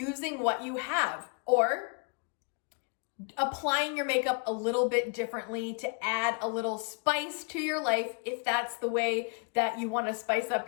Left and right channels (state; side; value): quieter; right; 35.6 dB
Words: what you have, or applying your makeup a little bit differently to add a little spice to your life if that's the way that you want to spice up